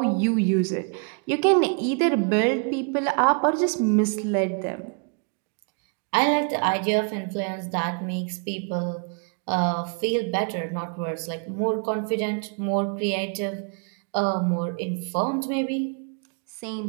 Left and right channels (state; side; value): quieter; left; 39.6 dB